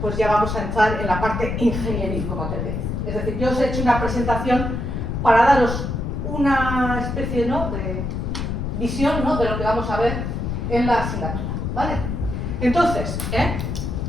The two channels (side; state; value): left; noise; rumble, 3 dB below the sound